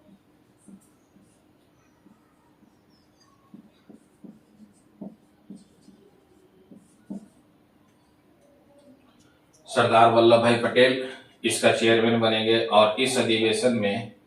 सरदार वल्लभ भाई पटेल इसका चेयरमैन बनेंगे और इस अधिवेशन में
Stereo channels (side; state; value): both; identical; correlation 1.00